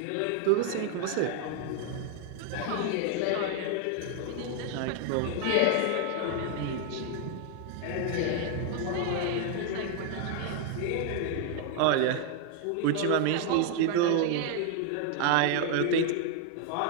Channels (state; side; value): different; both; correlation 0.00